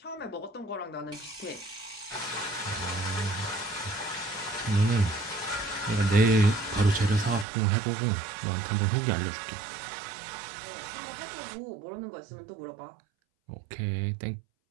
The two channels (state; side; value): drops out; left; at 7.5 s